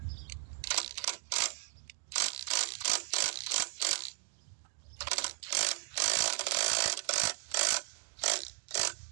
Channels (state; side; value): silent; left; digital silence